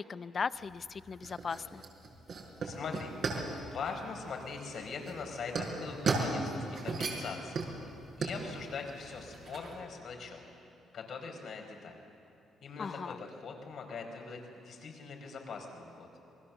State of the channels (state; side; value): normal; both; correlation 0.75